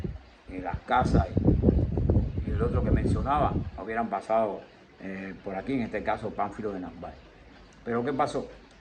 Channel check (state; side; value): identical; both; correlation 1.00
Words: las casas y el otro que mencionaba hubieran pasado por aquí, en este caso Pánfilo de Narváez. Pero ¿qué pasó?